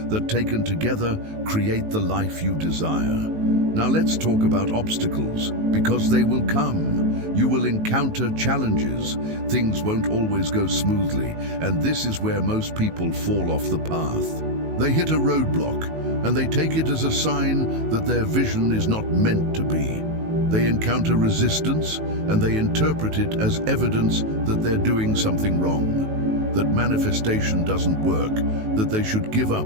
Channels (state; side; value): late; left; 19 ms